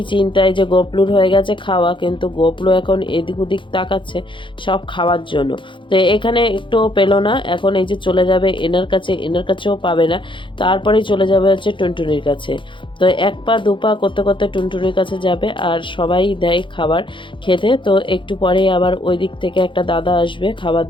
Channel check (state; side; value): late; right; 0.24 ms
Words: চিন্তায় যে গোপলুর হয়ে গেছে খাওয়া, কিন্তু গোপলু এখন এদিক ওদিক তাকাচ্ছে সব খাওয়ার জন্য। তো এখানে একটুও পেলো না, এখন এই যে চলে যাবে এনার কাছে, এনার কাছেও পাবে না, তারপরেই চলে যাবে হচ্ছে টুনটুনির কাছে। তো এক পা দু পা করতে করতে টুনটুনির কাছে যাবে, আর সবাই দেয় খাবার খেতে। তো একটু পরে আবার ওই দিক থেকে একটা দাদা আসবে খাবার